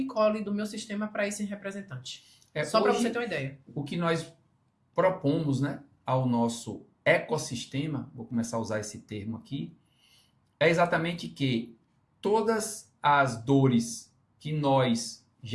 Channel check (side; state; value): both; identical; correlation 1.00